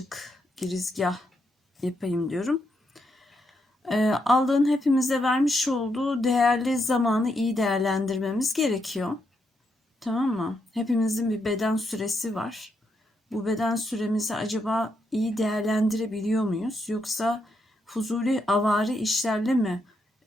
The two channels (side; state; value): both; normal; correlation 0.80